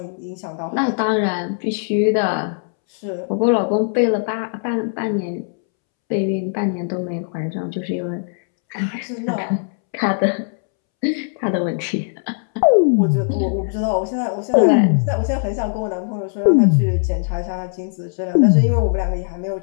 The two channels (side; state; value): right; silent; 66 dB below the other